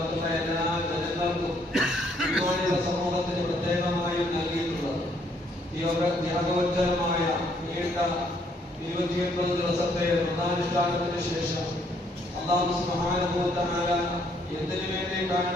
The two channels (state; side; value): normal; both; correlation 0.68